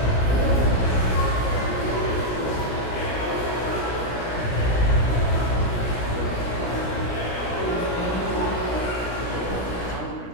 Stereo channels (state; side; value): late; right; 17 ms